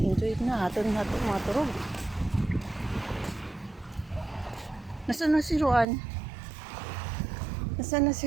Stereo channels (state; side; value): drops out; left; at 5.9 s